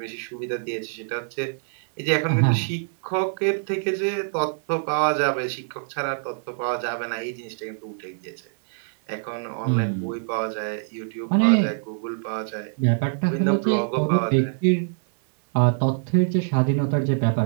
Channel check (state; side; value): silent; left; 61 dB below the other